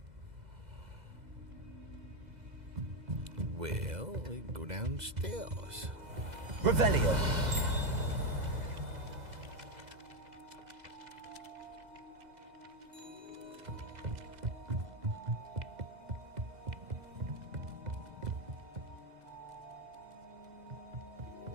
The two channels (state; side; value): late; left; 2.0 ms